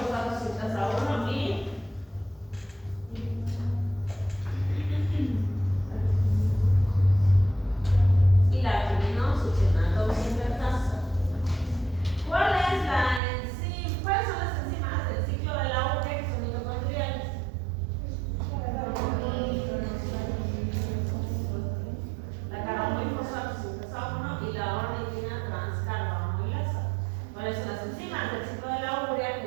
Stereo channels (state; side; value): drops out; left; at 13.2 s